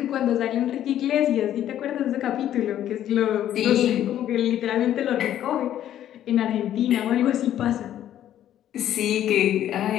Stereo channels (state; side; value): quieter; right; 11.5 dB